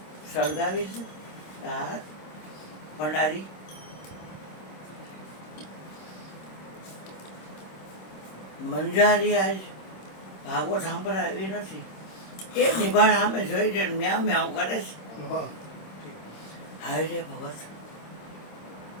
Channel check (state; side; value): late; right; 26 ms